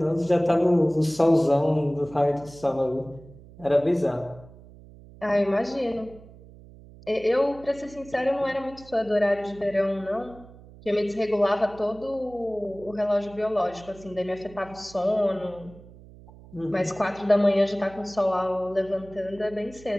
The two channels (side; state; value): right; noise; hum, 21 dB below the sound